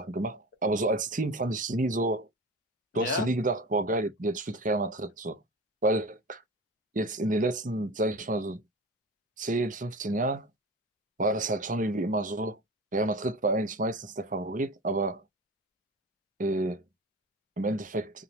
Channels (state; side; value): normal; both; correlation 0.33